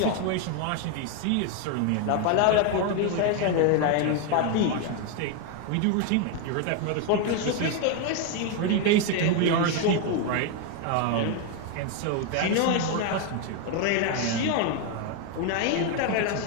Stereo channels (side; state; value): both; different; correlation 0.01